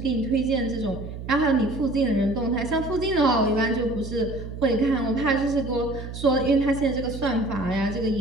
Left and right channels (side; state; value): right; noise; hum, 9 dB below the sound